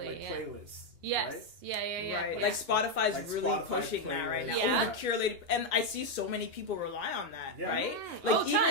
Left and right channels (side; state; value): left; late; 2.9 ms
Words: like playlists. Yes. Right? Yeah. Right. Like Spotify's like really Spotify pushing that right now. Yeah. Curated, and I see so many people rely on that. Right. Like even